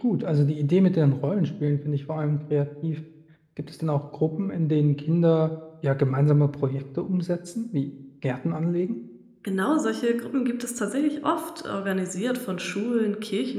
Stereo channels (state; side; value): identical; both; correlation 1.00